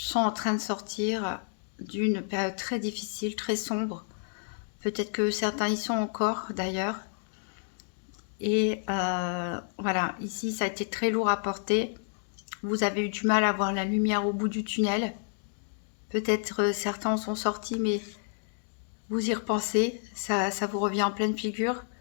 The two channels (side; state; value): right; silent; digital silence